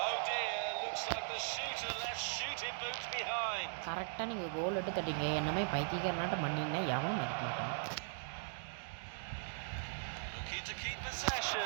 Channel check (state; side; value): silent; left; digital silence